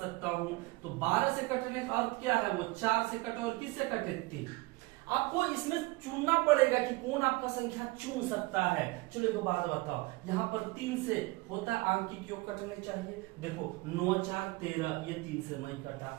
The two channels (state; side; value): quieter; left; 22.7 dB